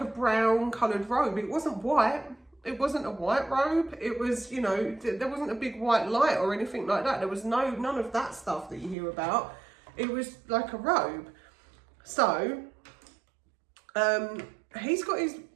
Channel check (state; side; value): drops out; left; at 9.0 s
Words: brown coloured robe. It wasn't white. It wasn't a white robe. It was, you know, there wasn't a big white light or anything like that. There was none of that stuff that you hear about. It was like a robe. So, he's got